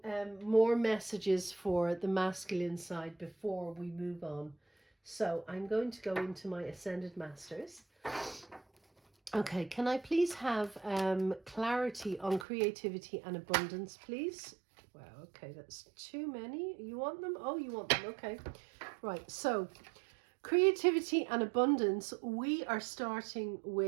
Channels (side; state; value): left; drops out; at 12.5 s